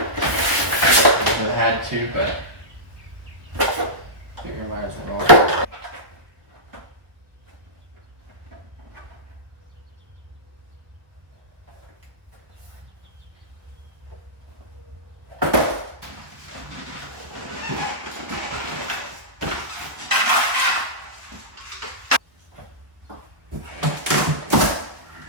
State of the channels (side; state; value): left; late; 1.1 ms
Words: had to, but figure might as well.